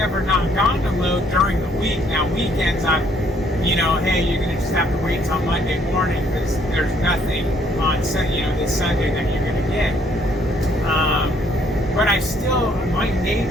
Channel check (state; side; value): normal; both; correlation 0.66